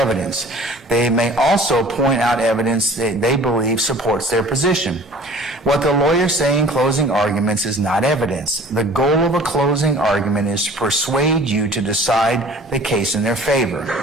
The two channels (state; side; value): normal; both; correlation 0.47